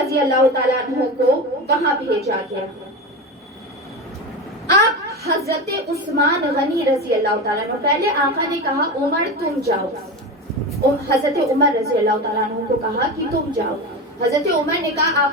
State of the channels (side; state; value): both; normal; correlation 0.23